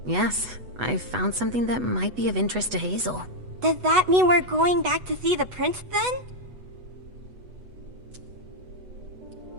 Yes, I found something that might be of interest to Hazel. Does that mean we're going back to see the prince then?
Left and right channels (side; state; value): left; late; 8.1 ms